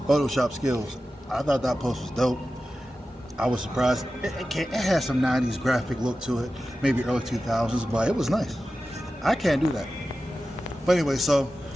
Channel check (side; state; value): both; normal; correlation 0.93